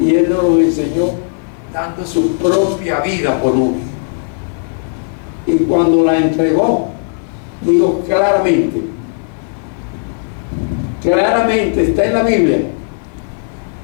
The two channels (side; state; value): right; silent; 56 dB below the other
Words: Él nos los enseñó dando su propia vida por uno. Y cuando la entregó, digo claramente está en la Biblia,